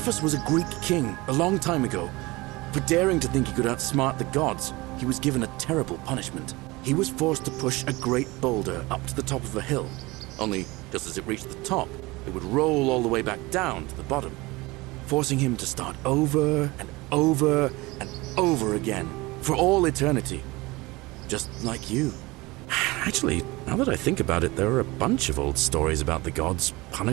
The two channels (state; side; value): quieter; left; 22.3 dB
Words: was a Greek king a long time ago. For daring to think he could outsmart the gods, he was given a terrible punishment. He was forced to push a great boulder up to the top of a hill. Only, just as it reached the top, it would roll all the way back down to the bottom, forcing him to start over and over and over again, for all eternity. Just like you. Actually, now that I think about it, there are a bunch of old stories about the gods